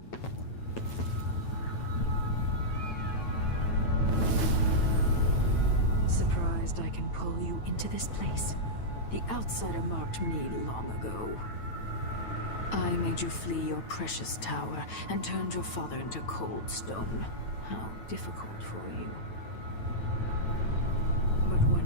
Surprised I can pull you into this place? The outsider marked me long ago. I made you flee your precious tower and turned your father into cold stone. How difficult for you. But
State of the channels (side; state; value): right; late; 9.1 ms